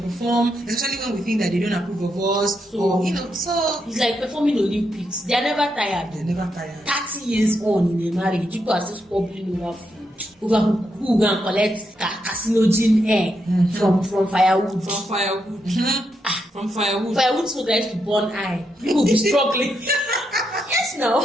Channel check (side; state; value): both; normal; correlation 0.82